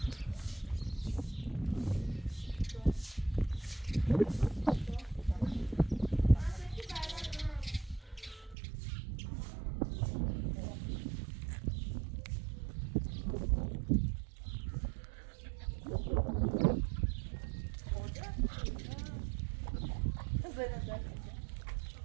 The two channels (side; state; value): left; drops out; at 8.6 s